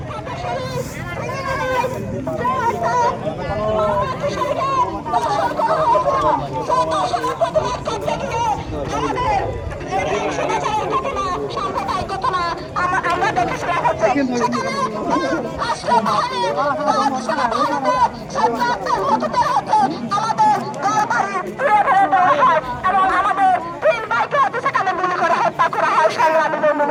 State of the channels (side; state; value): both; identical; correlation 1.00